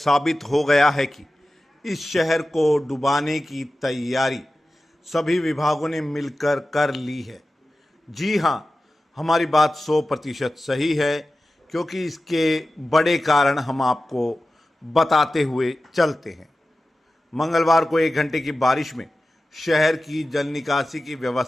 हो गया है कि इस शहर को डुबाने की तैयारी सभी विभागों ने मिलकर कर ली है। जी हाँ, हमारी बात 100% सही है, क्योंकि इसके बड़े कारण हम आपको बताते हुए चलते हैं। मंगलवार को 1 घंटे की बारिश में शहर की जल निकासी की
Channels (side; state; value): both; normal; correlation 0.95